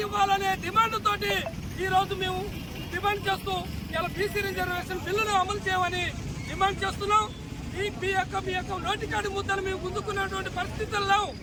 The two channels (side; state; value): both; identical; correlation 1.00